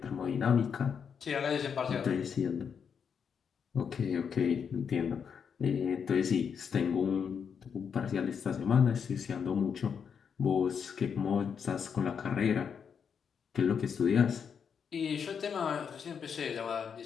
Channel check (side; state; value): right; quieter; 6.9 dB